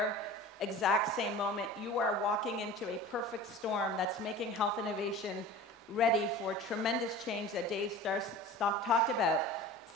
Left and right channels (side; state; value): both; normal; correlation 0.37